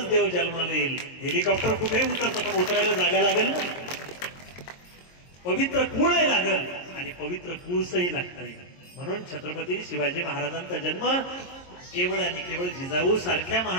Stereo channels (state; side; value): late; right; 22 ms